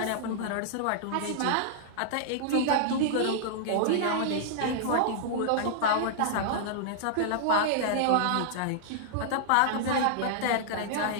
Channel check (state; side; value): different; both; correlation -0.01